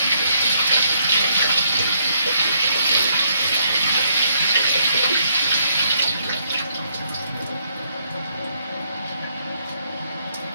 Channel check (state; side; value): inverted; both; correlation -0.72